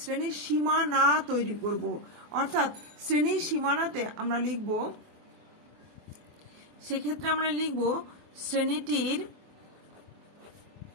সীমানা তৈরি করব। অর্থাৎ শ্রেণীর সীমানাতে আমরা লিখব, সেক্ষেত্রে আমরা লিখব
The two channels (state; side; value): late; left; 24 ms